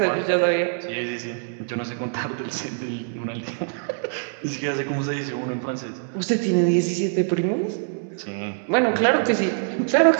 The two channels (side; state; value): left; silent; digital silence